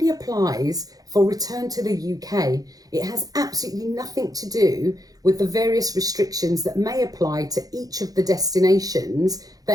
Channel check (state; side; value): late; left; 0.18 ms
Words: applies for return to the UK. It has absolutely nothing to do with the various restrictions that may apply to each of the destinations